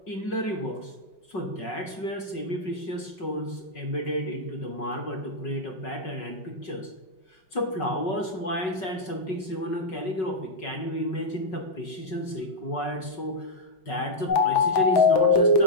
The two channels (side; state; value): right; late; 5.4 ms